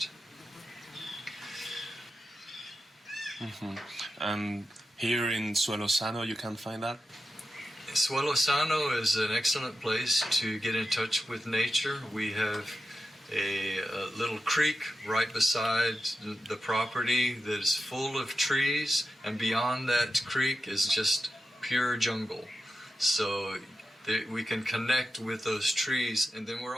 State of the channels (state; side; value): normal; both; correlation 0.90